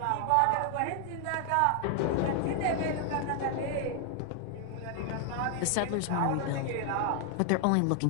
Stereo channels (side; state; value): both; different; correlation 0.00